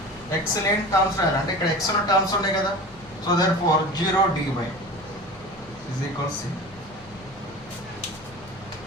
లేని టర్మ్స్ రాయాలి. అంటే ఇక్కడ ఎక్స్ ఉన్న టర్మ్స్ ఉన్నాయి కదా, so therefore 0 dy is equal C.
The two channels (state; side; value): noise; left; hum, 24 dB below the sound